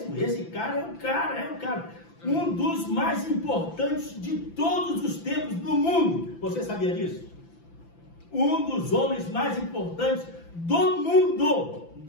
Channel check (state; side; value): late; right; 5.9 ms